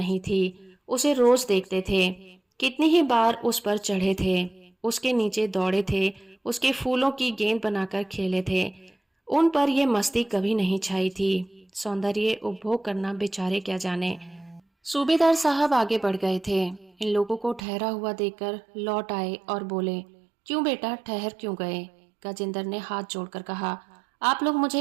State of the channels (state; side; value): drops out; left; at 17.6 s